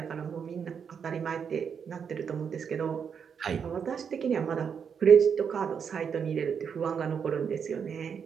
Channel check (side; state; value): left; quieter; 7.0 dB